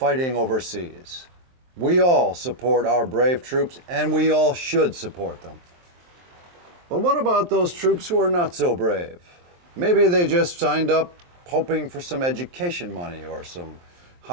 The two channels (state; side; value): late; left; 23 ms